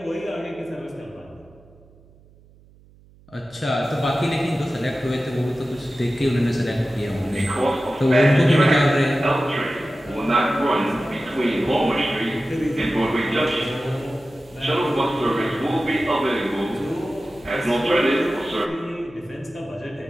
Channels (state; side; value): noise; right; hum, 27 dB below the sound